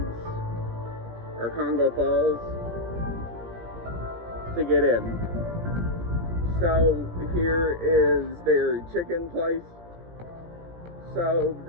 or Congo Falls, to get in. So here is their chicken place. So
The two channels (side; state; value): left; late; 17 ms